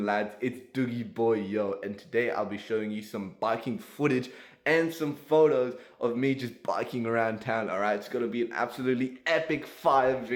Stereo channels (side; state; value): both; identical; correlation 1.00